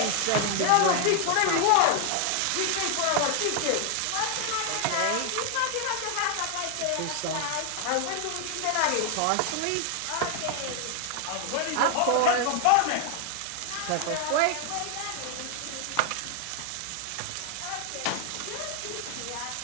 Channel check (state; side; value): different; both; correlation 0.00